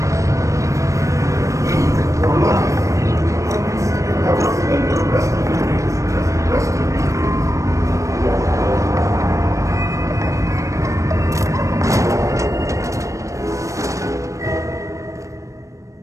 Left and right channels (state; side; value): late; left; 0.15 ms